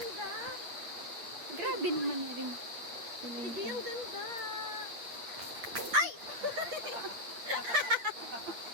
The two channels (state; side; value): late; left; 8.3 ms